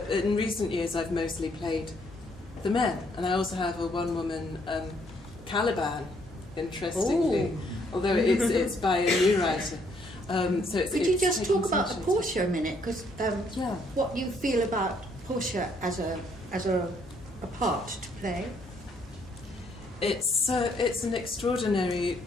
in recent years, I've mostly played the men, and I also have a one-woman Caliban, interestingly, although it's by a new writer. So it's, Could you just talk about taking Portia a minute? Because what you feel about Portia as a part to play? It's an extraordinary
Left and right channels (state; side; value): normal; both; correlation 0.69